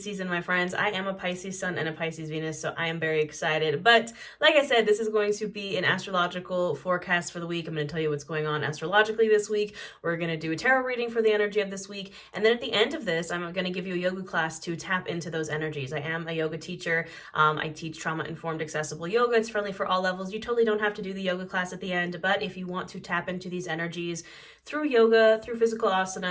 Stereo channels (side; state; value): both; identical; correlation 1.00